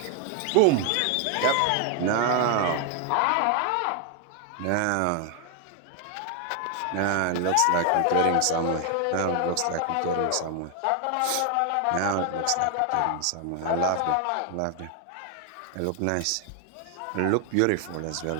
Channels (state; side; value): different; both; correlation 0.00